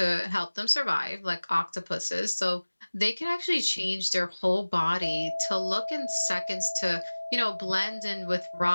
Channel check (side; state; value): both; inverted; correlation -1.00